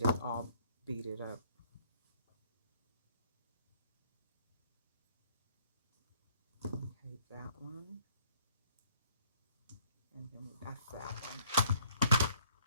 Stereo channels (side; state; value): both; inverted; correlation -0.62